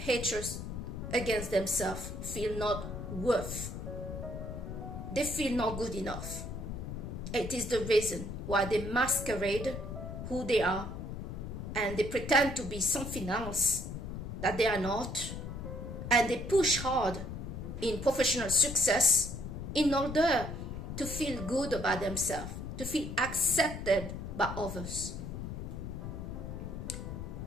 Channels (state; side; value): noise; left; rumble, 7 dB below the sound